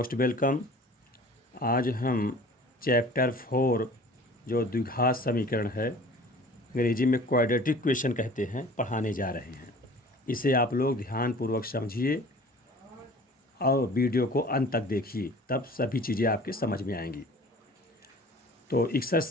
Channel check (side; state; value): both; normal; correlation 0.46